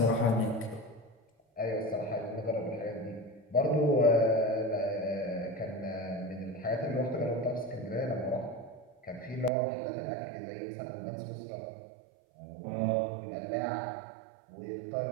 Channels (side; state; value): left; drops out; at 9.5 s